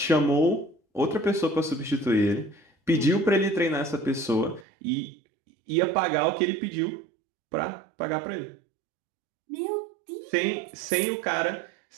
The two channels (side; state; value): left; drops out; at 4.7 s